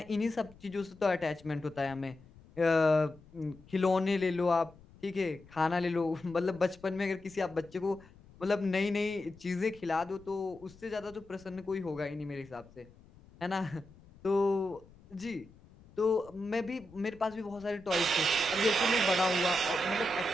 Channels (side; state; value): left; noise; rumble, 24 dB below the sound